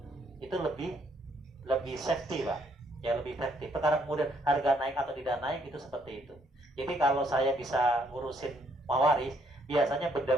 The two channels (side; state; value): both; normal; correlation 0.69